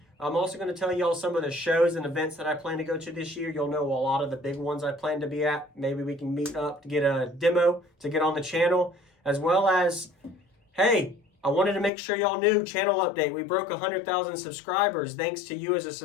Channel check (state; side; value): drops out; right; at 11.9 s